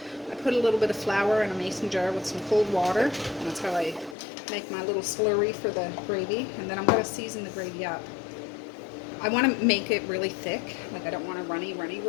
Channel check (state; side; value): drops out; right; at 4.2 s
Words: I put a little bit of flour in a mason jar with some cold water. And that's how I make my little slurry for the gravy. And then I'm going to season the gravy up. I want to make it really thick. Like, I don't want a runny